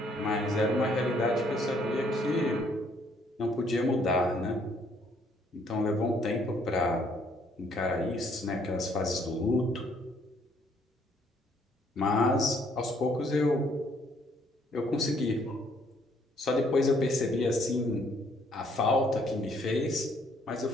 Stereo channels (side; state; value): both; normal; correlation 0.66